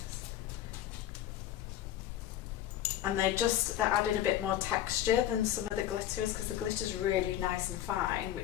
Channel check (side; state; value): right; quieter; 12.2 dB